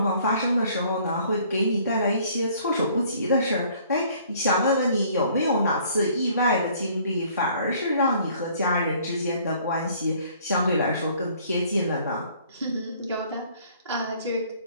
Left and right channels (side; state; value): both; inverted; correlation -0.58